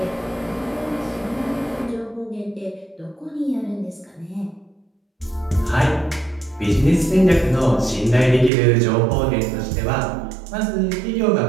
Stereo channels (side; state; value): left; drops out; at 8.5 s